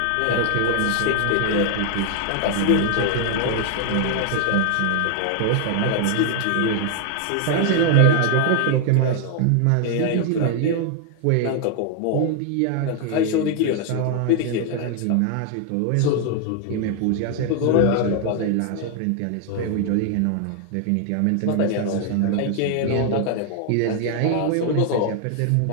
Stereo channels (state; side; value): different; both; correlation 0.00